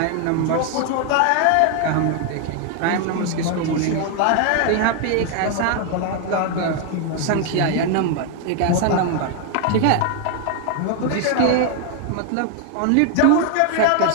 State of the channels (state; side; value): different; both; correlation 0.01